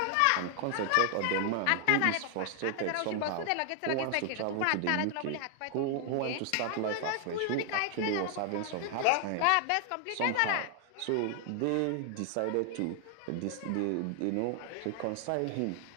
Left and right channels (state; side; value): different; both; correlation 0.00